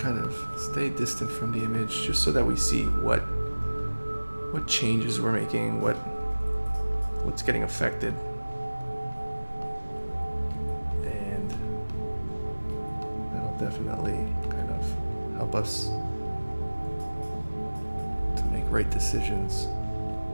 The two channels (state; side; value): inverted; both; correlation -1.00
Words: kind of stay distant from the image, just so that we see what changes we're making, what's getting affected, and that'll definitely kind of help us to make right decisions